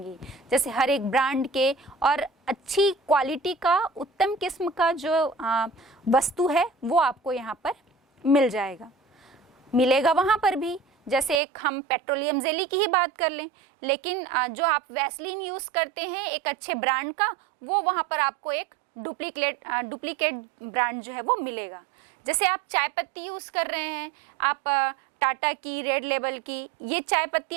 जैसे हर एक ब्रांड के और अच्छी क्वालिटी का, उत्तम किस्म का जो वस्तु है वो आपको यहाँ पर मिलेगा वहाँ पर भी। जैसे एक हम पेट्रोलियम जेली की ही बात कर लें, लेकिन जो आप वैसलीन यूज़ करते हैं एक अच्छे ब्रांड का, वो वहाँ पर आपको एक डुप्लीकेट ब्रांड जो है वो मिलेगा। जैसे आप चाय पत्ती यूज़ कर रहे हैं, आप टाटा की, रेड लेबल की ये चाय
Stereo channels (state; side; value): drops out; left; at 11.4 s